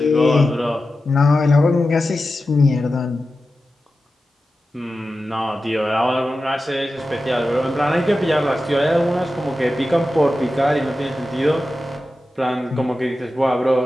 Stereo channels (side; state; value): both; normal; correlation 0.93